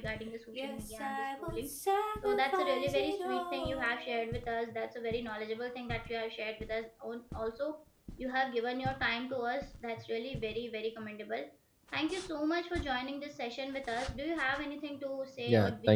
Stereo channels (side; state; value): both; identical; correlation 1.00